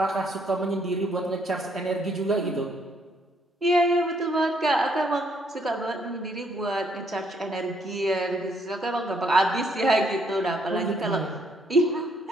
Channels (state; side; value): normal; both; correlation 0.70